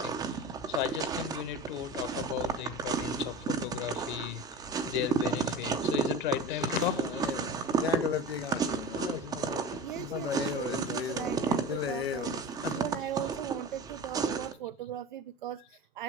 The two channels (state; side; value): normal; both; correlation 0.32